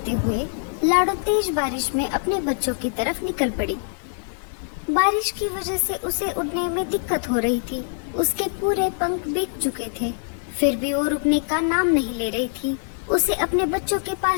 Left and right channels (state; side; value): silent; right; 63 dB below the other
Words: हुए लाडो तेज बारिश में अपने बच्चों की तरफ निकल पड़ी। बारिश की वजह से उसे उड़ने में दिक्कत हो रही थी। उसके पूरे पंख भीग चुके थे, फिर भी वो रुकने का नाम नहीं ले रही थी। उसे अपने बच्चों के